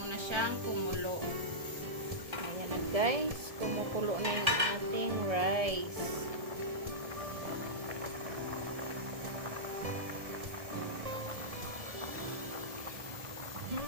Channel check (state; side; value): late; left; 1.7 ms